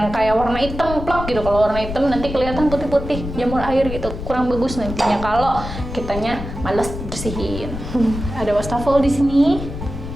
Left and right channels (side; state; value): left; noise; rumble, 8 dB below the sound